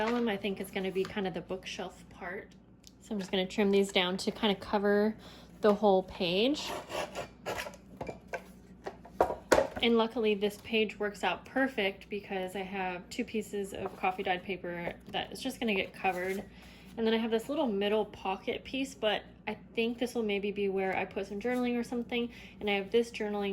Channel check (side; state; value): both; identical; correlation 1.00